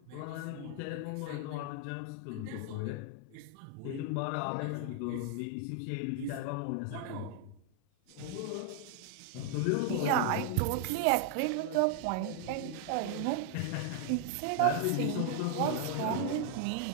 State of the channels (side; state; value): both; different; correlation 0.00